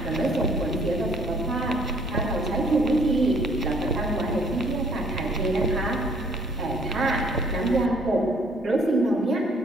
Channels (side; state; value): both; normal; correlation 0.61